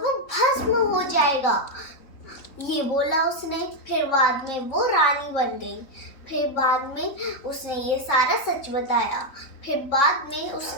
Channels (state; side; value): late; right; 3.6 ms